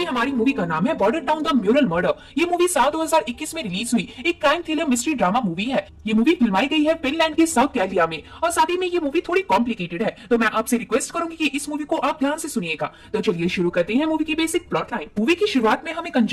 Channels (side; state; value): both; identical; correlation 1.00